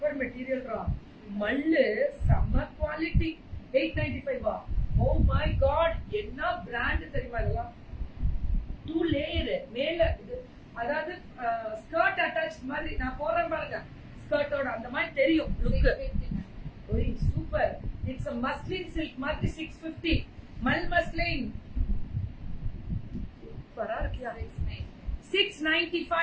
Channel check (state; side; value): identical; both; correlation 1.00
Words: material ரா. மல்லு செம்ம குவாலிட்டி. 895. ஓ மை காட், என்ன பிராண்ட் தெரியுமா இதெல்லாம்? 2 லேயர் மேல இது, அதாவது ஸ்கர்ட் அட்டாச் மாதிரி. நான் போறேன் பாருங்க ஸ்கர்ட்டோட, அந்த மாதிரி தெரியும் லுக். ஓய் super. It's a muslin silk மாதிரி 650. மல் மஸ்லின் சூப்பரா இருக்கியா?